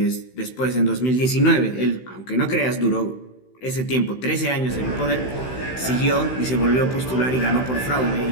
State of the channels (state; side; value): late; right; 16 ms